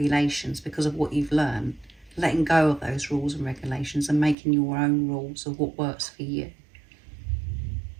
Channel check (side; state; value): left; drops out; at 4.4 s